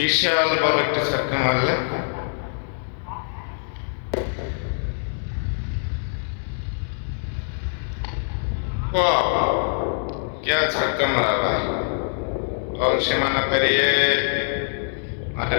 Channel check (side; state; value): right; silent; digital silence